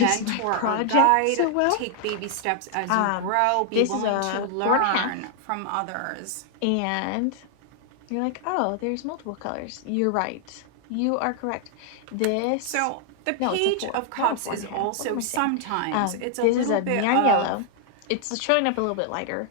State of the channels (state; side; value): different; both; correlation 0.00